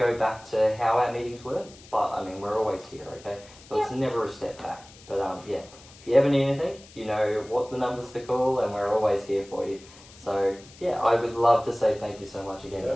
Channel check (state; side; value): noise; left; hiss, 22 dB below the sound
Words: back to how our meetings were, but I mean, we're always here, okay? So it's never a step back. But if you ever need anything, you know what the numbers to call, and we're always here for you. So I would love to say thank you so much again,